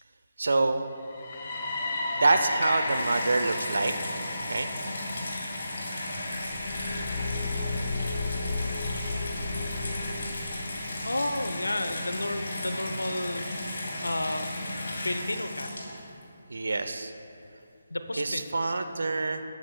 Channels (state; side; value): inverted; both; correlation -0.89